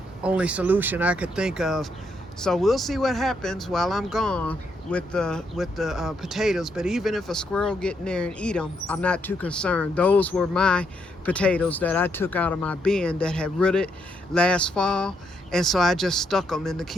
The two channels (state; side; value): normal; both; correlation 0.76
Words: only solution I could think of. So we'll see what happens while I'm gone with the potatoes. But even if a squirrel get in there and eat them, I'm not too concerned. Those were my potatoes that I took out of my bin that had rooted last fall, and so I just stuck them in the